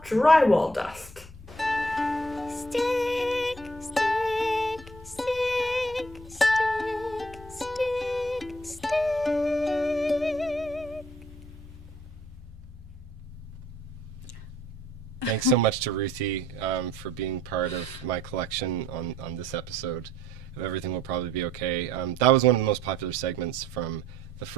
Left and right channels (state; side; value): normal; both; correlation 0.62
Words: drywall dust. Stick, stick, stick, stick, stick, stick. Thanks so much to Ruthie for being part of my collection on this episode of Everything Will Probably Be Okay. That was one of the most popular segments from the